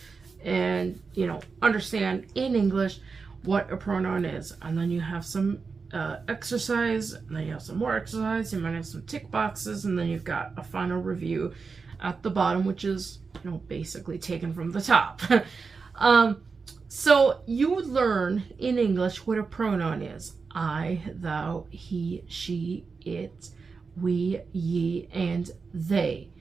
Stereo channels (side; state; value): left; quieter; 4.8 dB